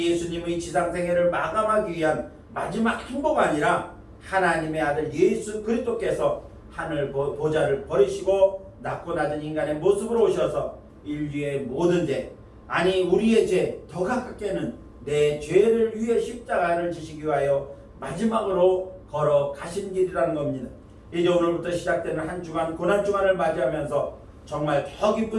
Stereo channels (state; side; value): identical; both; correlation 1.00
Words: 예수님의 지상생애를 마감하기 위한 마지막 행보가 아니라 하나님의 아들 예수 그리스도께서 하늘 보좌를 버리시고 낮고 낮은 인간의 모습으로 오셔서 인류의 모든 죄, 아니 우리의 죄 더 가깝게는 내 죄를 위해 십자가를 지시기 위하여 마지막으로 걸어가신 길이라는 겁니다. 이제 오늘부터 시작되는 한 주간 고난주간을 맞이하면서 정말 더